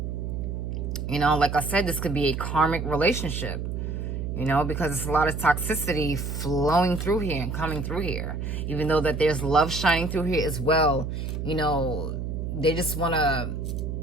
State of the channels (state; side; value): noise; right; hum, 4 dB below the sound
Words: You know, like I said, this could be a karmic relationship. You know, because it's a lot of toxicity flowing through here and coming through here. Even though that there's love shining through here as well. You know, they just want to...